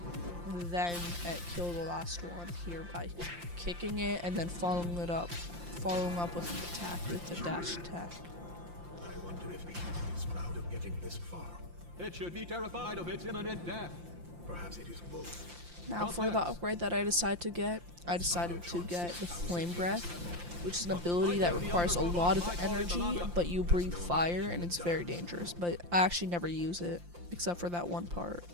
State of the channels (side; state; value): left; late; 5.7 ms